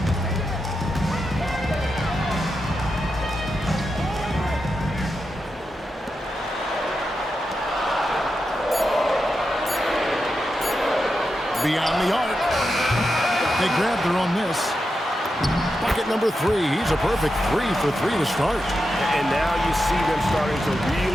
Beyond the arc. They grab their own miss. Bucket number 3. He's a perfect 3 for 3 to start. And now you see them starting to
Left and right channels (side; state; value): both; normal; correlation 0.88